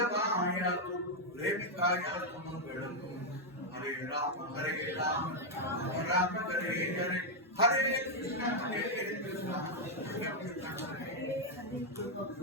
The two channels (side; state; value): both; normal; correlation -0.01